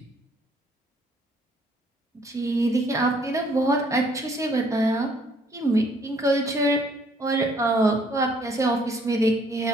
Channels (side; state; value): both; normal; correlation 0.64